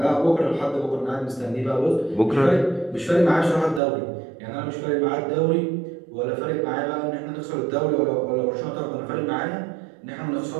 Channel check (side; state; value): left; drops out; at 3.8 s